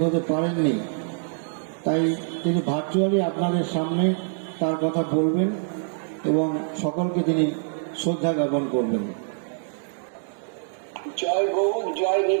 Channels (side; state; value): left; silent; digital silence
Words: হতে পারেননি, তাই তিনি ভার্চুয়ালি আপনাদের সামনে তার কথা বলবেন এবং সকলকে তিনি শ্রদ্ধা জ্ঞাপন করবেন। জয় গৌর, জয়